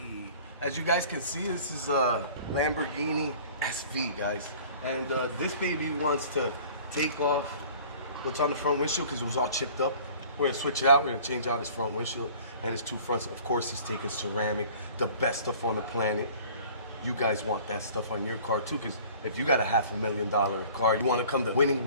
As you guys can see, this is a Lamborghini SV, guys. And this baby wants to take off what's on the front windshield because it was all chipped up. We're gonna switch it out. We're gonna change out his front windshield and his two fronts. Of course, he's taking ceramic, the best stuff on the planet. You guys want that stuff on your car too, because if you got a $500,000 car, you want to come to Winning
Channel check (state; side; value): inverted; both; correlation -0.48